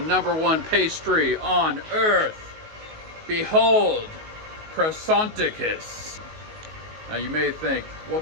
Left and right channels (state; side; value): late; left; 19 ms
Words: pastry on earth. Behold, Croissanticus. Now you may think,